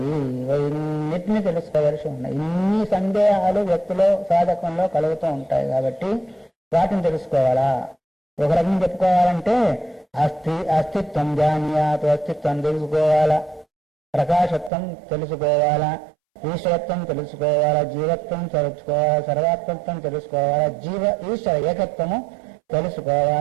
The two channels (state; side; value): drops out; left; at 14.7 s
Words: ఇవన్నిటిని తెలుసుకోవాల్సి ఉన్నాయి. ఇన్ని సందేహాలు వ్యక్తిలో, సాధకంలో కలుగుతూ ఉంటాయి. కాబట్టి వాటిని తెలుసుకోవాలా. ఒక రకం చెప్పుకోవాలంటే అస్తిత్వం జానీయాత్, అస్తిత్వం తెలుసుకోవాలా, ప్రకాశత్వం తెలుసుకోవాలా, ఈశ్వరత్వం తెలుసుకోవాలా, జీవత్వం తెలుసుకోవాలా, సర్వాత్మత్వం తెలుసుకోవాలా, ఈశ్వర ఏకత్వము